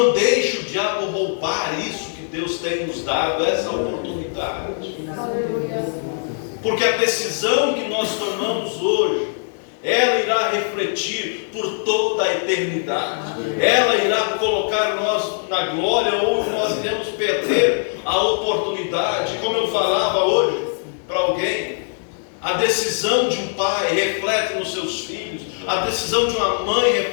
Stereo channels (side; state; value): right; silent; digital silence